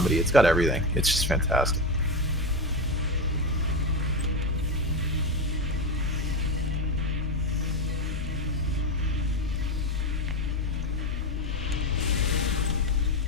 It's got everything. It's just fantastic.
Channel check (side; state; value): both; normal; correlation 0.14